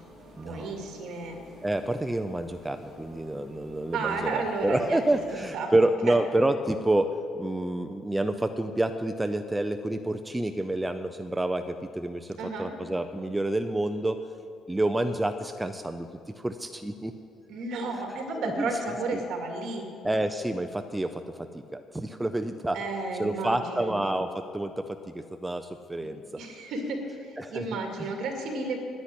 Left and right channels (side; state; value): both; normal; correlation 0.89